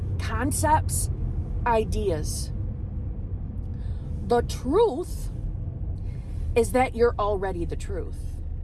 concepts, ideas. The truth is that you're already the truth.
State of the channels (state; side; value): identical; both; correlation 1.00